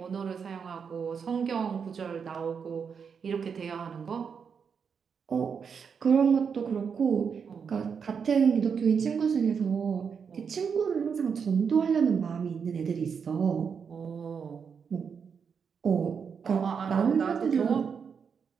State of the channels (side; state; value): left; quieter; 6.4 dB